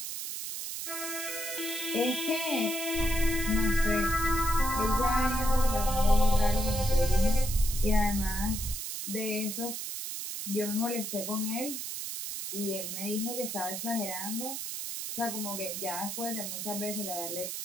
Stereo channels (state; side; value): noise; right; hiss, 5 dB below the sound